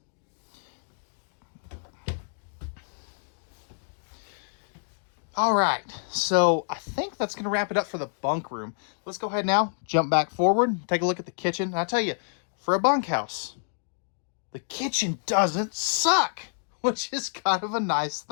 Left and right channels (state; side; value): silent; right; digital silence